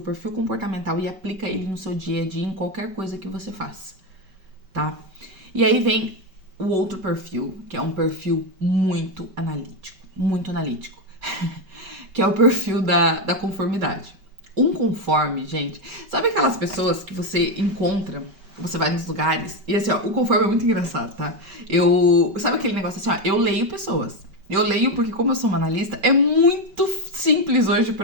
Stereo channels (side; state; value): left; late; 5.2 ms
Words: perfil comportamental e aplica ele no seu dia a dia, em qualquer coisa que você faça, tá? E aí vem o outro perfil, que é um perfil muito analítico, que é o perfil da conformidade. Um conforme, gente, sabe aquelas pessoas que você encontra, você vai nos lugares, e assim, ó, o conforme é muito engraçado, tá? Sabe aquele negócio assim, ó, eu leio pessoas. Eu leio porque, como eu sou uma analista, é muito simples hoje